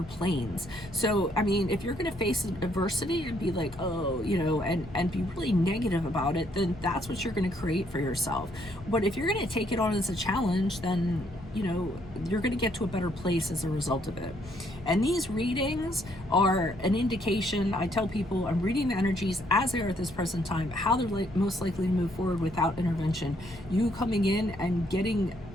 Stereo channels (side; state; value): both; normal; correlation 0.70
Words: planes. So, I mean, if you're gonna face adversity and be like, oh, and be really negative about it, then that's what you're gonna create for yourself. But if you're gonna take it on as a challenge, then you're going to get to a better place as a result of it. And these readings are an indication. I tell people I'm reading the energies as they are at this present time, how they're most likely to move forward without intervention. You coming in and